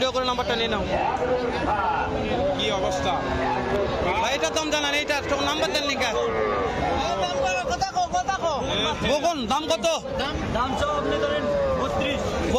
করে নাম্বারটা নিয়ে নাও। কি অবস্থা ভাই? এটার দাম জানান, এইটার নাম্বার দেন লিখা। কখন দাম কত? দাম সব আপনি ধরেন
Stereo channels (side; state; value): both; identical; correlation 1.00